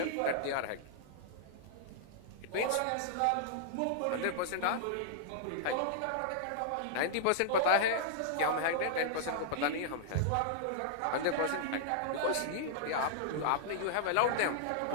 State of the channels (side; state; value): both; different; correlation -0.01